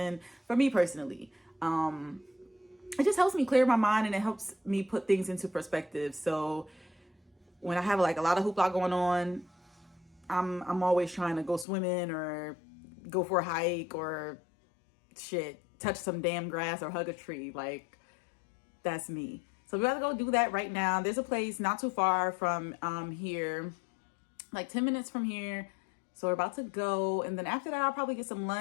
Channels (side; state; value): right; drops out; at 11.7 s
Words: for me personally. It just helps me clear my mind and it helps me put things into perspective. So when I have like a lot of hoopla going on, I'm always trying to go swimming or go for a hike or touch some damn grass or hug a tree. Like, that's me. So we gotta go do that right now. There's a place not too far from here, like 10 minutes from here. So we're about to go. And then after that, I'll probably get some